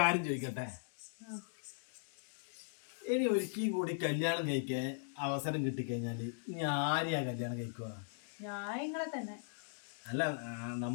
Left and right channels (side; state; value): right; silent; digital silence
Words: ചോദിക്കട്ടെ, ഇനി ഒരിക്കലും കൂടി കല്യാണം കഴിക്കാൻ അവസരം കിട്ടിക്കഴിഞ്ഞാല് ഇനി ആരെയാ കല്യാണം കഴിക്കുക? നിങ്ങളെ തന്നെ. അല്ല,